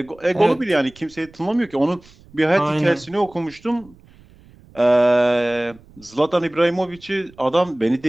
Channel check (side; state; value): right; noise; rumble, 26 dB below the sound